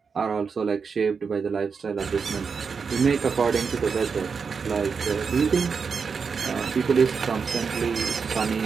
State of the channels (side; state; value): left; quieter; 5.6 dB